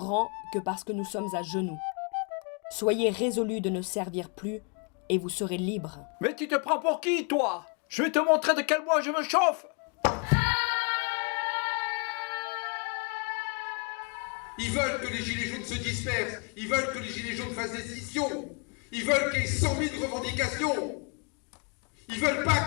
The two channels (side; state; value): right; quieter; 36.6 dB